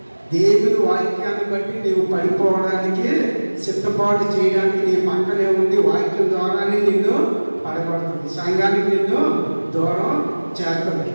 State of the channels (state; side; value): inverted; both; correlation -1.00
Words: దేవుని వాక్యాన్ని బట్టి నీవు పడిపోవడానికి సిద్ధపాటు చేయడానికి నీ పక్కనే ఉంది. వాక్యం ద్వారానే నిన్ను పడబడుతుంది, సంఘానికి నిన్ను దూరం చేస్తుంది.